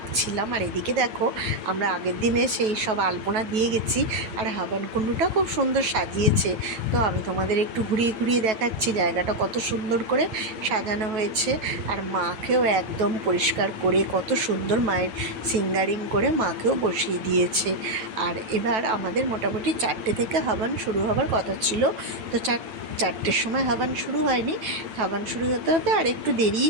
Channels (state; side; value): late; left; 9.2 ms